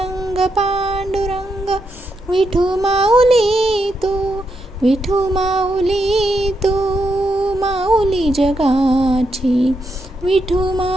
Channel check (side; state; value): both; normal; correlation 0.82